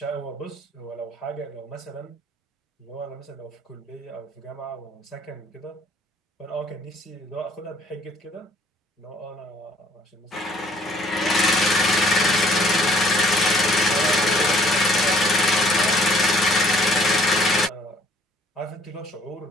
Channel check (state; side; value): normal; both; correlation 0.60